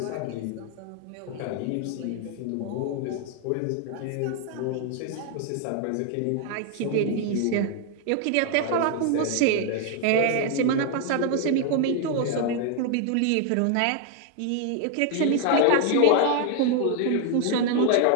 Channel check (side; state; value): both; different; correlation 0.00